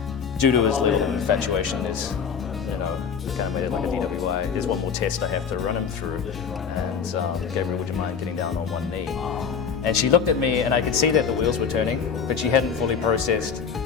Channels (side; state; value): right; quieter; 6.6 dB